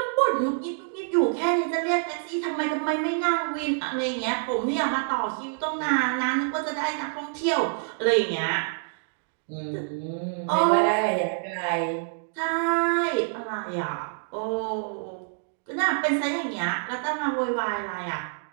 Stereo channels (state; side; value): silent; left; digital silence